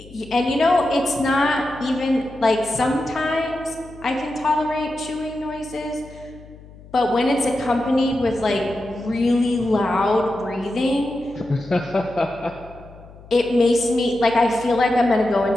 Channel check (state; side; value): noise; left; hum, 20 dB below the sound